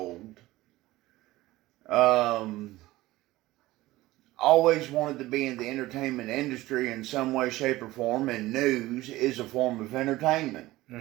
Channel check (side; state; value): left; quieter; 17.7 dB